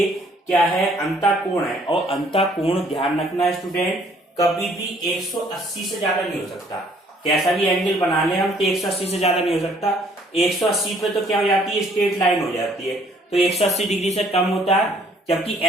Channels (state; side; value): normal; both; correlation 0.61